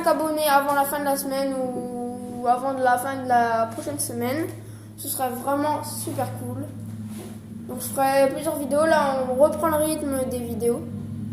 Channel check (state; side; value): identical; both; correlation 1.00